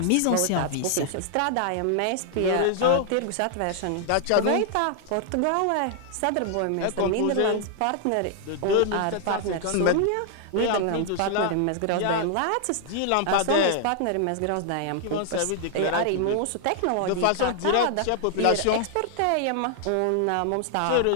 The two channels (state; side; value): different; both; correlation 0.00